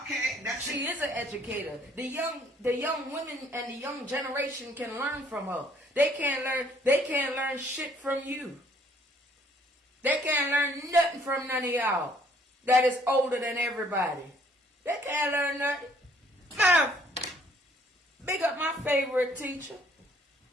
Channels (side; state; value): both; normal; correlation 0.62